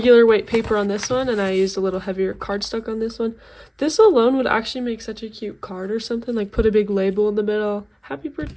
weight paper on this one, and I used a little heavier cardstock on this one. This alone would actually make such a cute card or something, like put a big label in the middle, happy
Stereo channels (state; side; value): identical; both; correlation 1.00